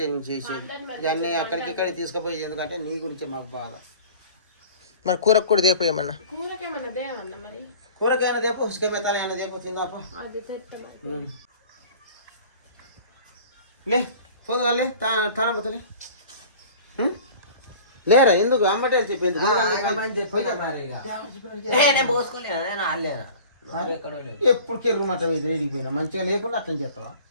నేను చేసేది ఇవన్నీ అక్కడికి ఇక్కడికి తీసుకుపోయేది. ఎందుకంటే నీ గురించే మాకు బాధ. మరి కూరకు కూడా దేపోయేమన్నా? కూరకైనా దేపో, ఉసుకమెత్తాలైనా దేపో, తిందాపో. లే పోదుగాలే తాన పోతలే. లేరా ఎందుకు అమ్మటే చెప్పింది? ఎప్పుడు కెర్రమాట వేడిపోయినా మంచిగా లేకుండా అట్లా చేస్తావా?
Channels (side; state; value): both; inverted; correlation -0.43